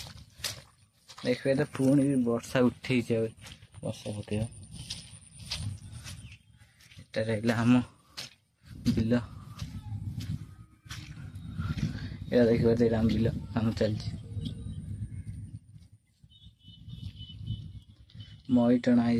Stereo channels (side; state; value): both; identical; correlation 1.00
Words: देखिए तो पुणी भी वर्षा उठे वर्षा उठे। आम बिल ये देखिए आम बिल काम चलती। मई टणा हो